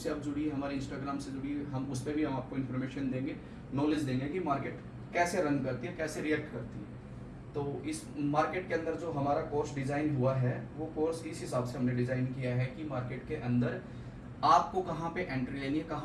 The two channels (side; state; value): both; identical; correlation 1.00